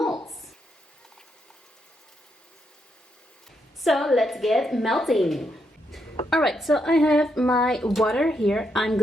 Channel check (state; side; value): normal; both; correlation 0.79